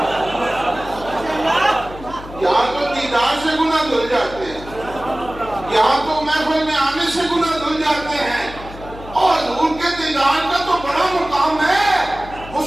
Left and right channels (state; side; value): noise; left; hum, 15 dB below the sound